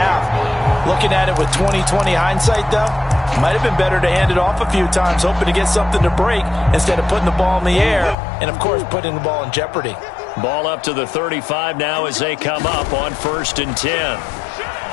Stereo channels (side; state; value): right; drops out; at 8.2 s